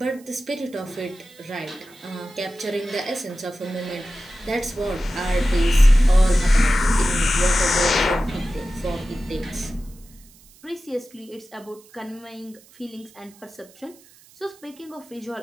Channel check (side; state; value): right; noise; hiss, 26 dB below the sound